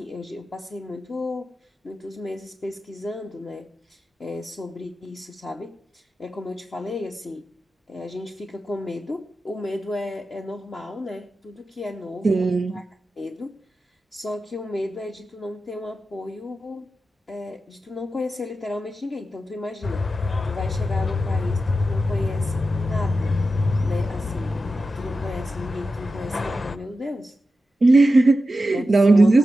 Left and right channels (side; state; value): both; normal; correlation 0.91